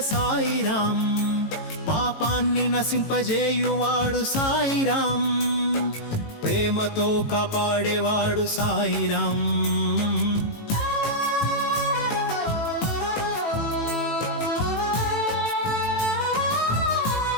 సాయిరాం పాపాన్ని నశింపజేయువాడు సాయిరాం ప్రేమతో కాపాడేవాడు సాయిరాం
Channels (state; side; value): late; right; 18 ms